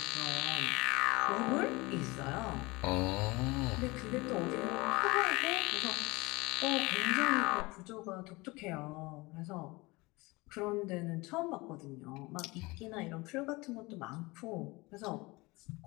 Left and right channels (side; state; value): right; quieter; 23.5 dB